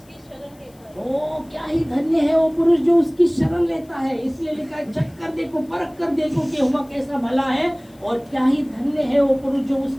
शरण लेता है। ओ क्या ही धन्य है वो पुरुष जो उसकी शरण लेता है। इसलिए लिखा है चक्कर देखो, परख कर देखो कि यहोवा कैसा भला है, और क्या ही धन्य है वो पुरुष जो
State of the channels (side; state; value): left; noise; hiss, 30 dB below the sound